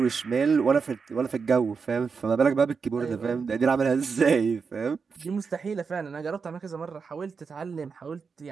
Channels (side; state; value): left; quieter; 5.4 dB